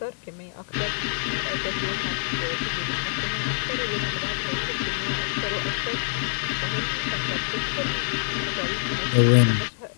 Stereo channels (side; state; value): right; silent; digital silence